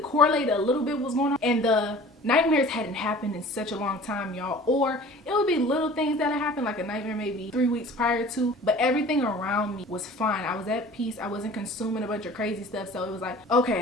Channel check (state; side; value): normal; both; correlation 0.45